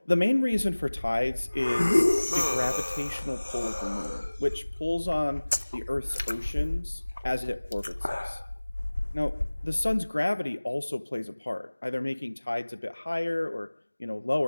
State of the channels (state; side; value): inverted; both; correlation -1.00